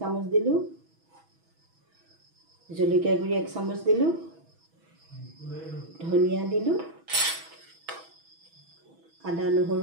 দিলোঁ, জলকীয়া গুড়ি 1 চামুচ দিলোঁ, ধনিয়া দিলোঁ, আদা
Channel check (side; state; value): left; late; 6.2 ms